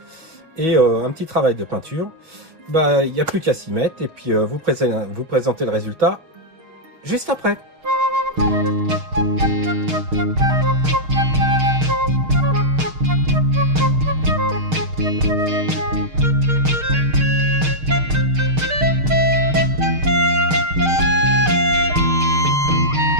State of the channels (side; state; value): left; late; 6.5 ms